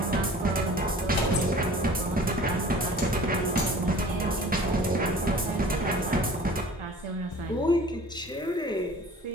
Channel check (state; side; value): normal; both; correlation 0.46